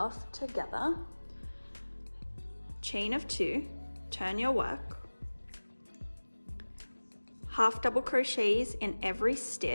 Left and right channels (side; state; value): both; inverted; correlation -1.00